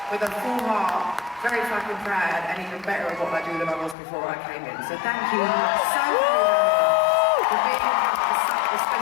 with a full heart, very fucking proud, and even better at what I do than I was before I came in. So thank you so very much for being a part of such a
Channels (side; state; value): right; drops out; at 4.0 s